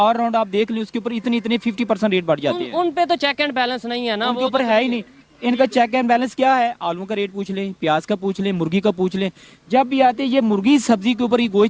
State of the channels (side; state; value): both; identical; correlation 1.00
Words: राउंड आप देख लें, उसके ऊपर इतने 50% रेट बढ़ जाते हैं। उन पे तो चेक एंड बैलेंस नहीं है ना, उनके वो ऊपर है ही नहीं। इनका चेक एंड बैलेंस क्या है? आलू का रेट पूछ लें, प्याज का पूछ लें, मुर्गी का पूछ लें। जब भी आते हैं ये मुर्गी सब्जी के ऊपर, ये